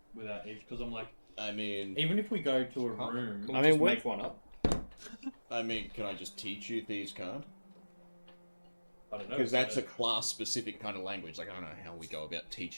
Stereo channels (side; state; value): both; inverted; correlation -1.00